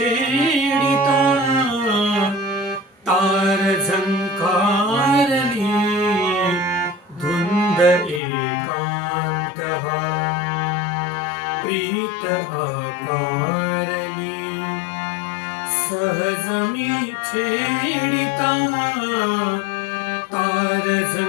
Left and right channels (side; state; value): right; drops out; at 8.2 s